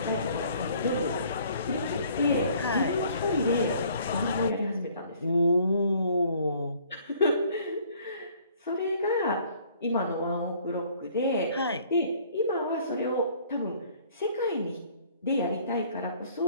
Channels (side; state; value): both; inverted; correlation -0.57